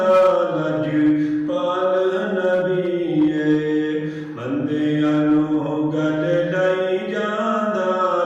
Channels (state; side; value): identical; both; correlation 1.00